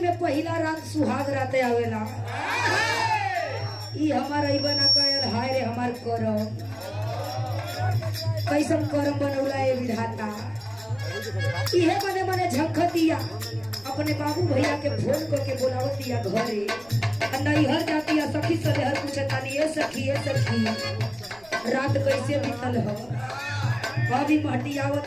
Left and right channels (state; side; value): noise; right; rumble, 27 dB below the sound